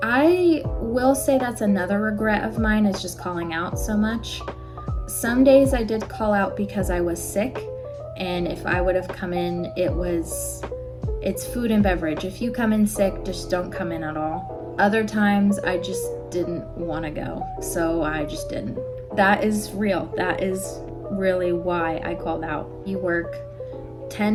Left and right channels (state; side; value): identical; both; correlation 1.00